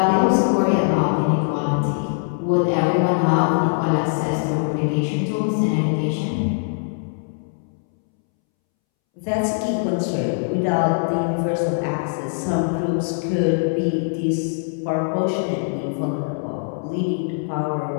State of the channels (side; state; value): right; silent; 64 dB below the other